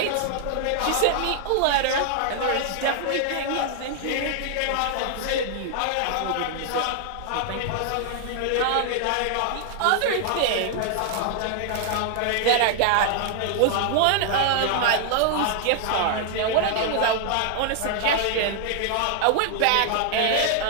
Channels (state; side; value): different; both; correlation 0.00